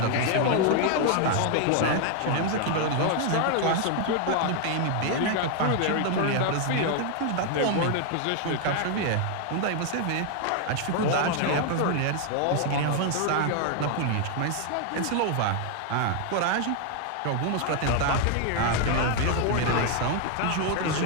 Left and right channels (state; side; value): different; both; correlation 0.00